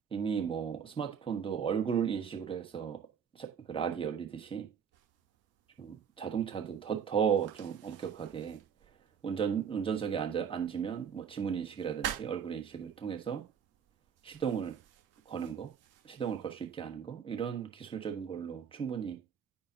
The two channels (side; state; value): left; quieter; 7.4 dB